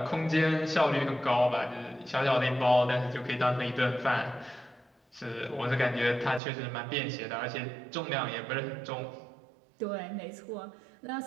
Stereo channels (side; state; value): left; drops out; at 6.4 s